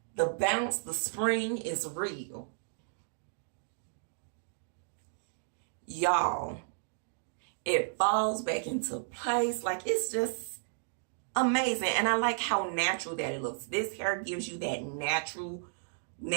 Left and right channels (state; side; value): silent; left; digital silence